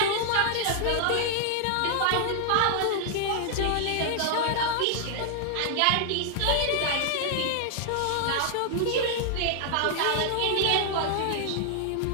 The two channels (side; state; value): both; different; correlation 0.00